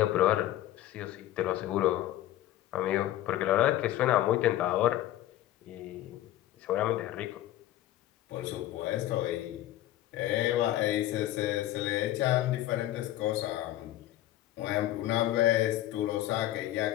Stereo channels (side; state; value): right; quieter; 14.1 dB